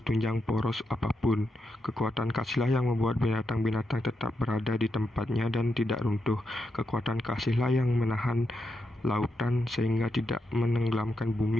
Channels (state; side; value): normal; both; correlation 0.84